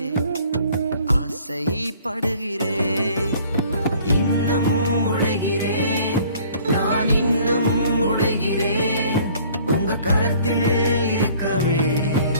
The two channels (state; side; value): inverted; both; correlation -0.54